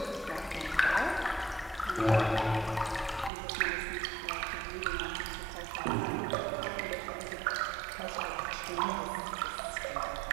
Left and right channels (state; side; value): drops out; left; at 3.3 s